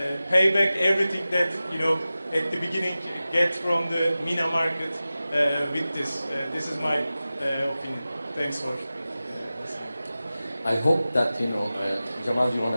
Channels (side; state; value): both; inverted; correlation -0.95